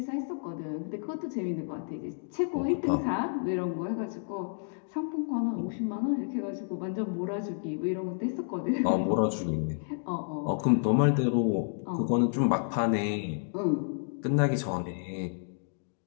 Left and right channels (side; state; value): right; silent; digital silence